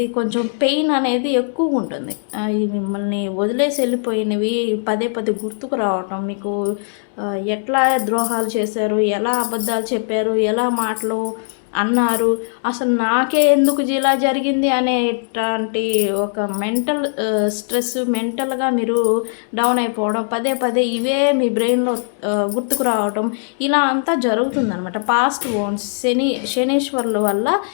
కొంచెం పెయిన్ అనేది ఎక్కువగా ఉంటుంది. ఈ మిమ్మల్ని వదిలేసి వెళ్ళిపోయినవి పదే పదే గుర్తుకు రావటం, మీకు ఎట్లా ద్రోహాలు చేశారు, ఎలా అబద్ధాలు చెప్పారు, ఎలా మాటలు అన్నారు, అసలు నాకే ఎందుకు ఇలా జరిగింది అనేటువంటి ఒక మెంటల్ స్ట్రెస్, మెంటల్గా మీరు డౌన్ అయిపోవడం, పదే పదే ఇవే మీ బ్రెయిన్లో గుర్తుకు రావడం, ఇలా అంతా జరుగుతుందనమాట. పాస్ట్ ఓన్స్ శనీశ్వరుల వల్ల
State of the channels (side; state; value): right; silent; digital silence